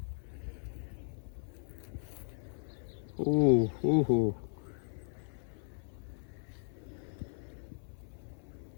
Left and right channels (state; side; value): silent; right; 53 dB below the other